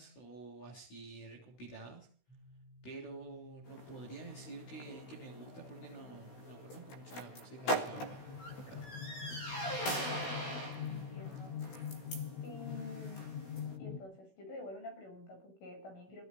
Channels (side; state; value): right; late; 16 ms